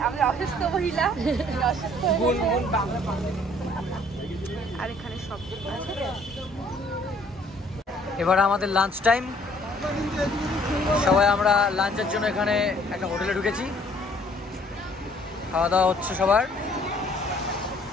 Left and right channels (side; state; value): both; normal; correlation 0.60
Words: আমি অসুস্থ মহিলা, আর এখানে সব এবার আমাদের লাঞ্চ টাইম। সবাই আমরা লাঞ্চের জন্য এখানে একটা হোটেলে ঢুকেছি, খাওয়া দাওয়া হচ্ছে সবার।